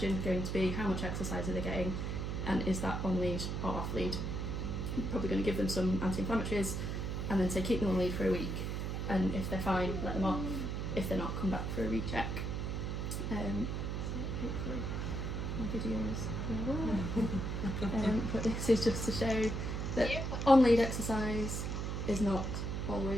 going to be how much exercise are they getting, and is that on lead or off lead? You're probably going to give them some anti-inflammatories and then say keep them on lead for a week, and if they're fine, let them off. If they're not, come back for a recheck. So hopefully my videos will work. But this is just to show that on-lead exercise is not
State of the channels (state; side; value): noise; right; hum, 2 dB below the sound